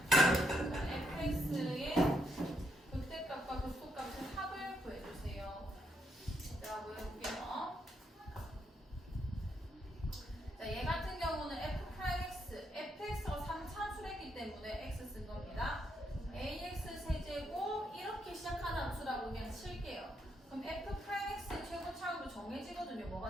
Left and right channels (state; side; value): normal; both; correlation 0.77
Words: 자, fx의 극대값과 극소값의 합을 구해주세요. 자, 보여볼게요. 자, 얘 같은 경우는 f'x, fx가 3차수랬기 때문에 x 쓴 겁니다. ax 세제곱 이렇게 시작하는 함수라고 그냥 칠게요. 그럼 f'x 최고차로 정해지거든요.